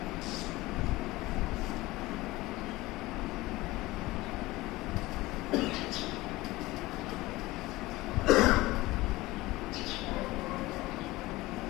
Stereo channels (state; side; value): quieter; right; 19.4 dB